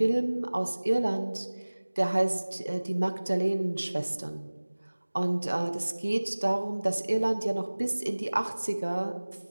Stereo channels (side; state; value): both; inverted; correlation -1.00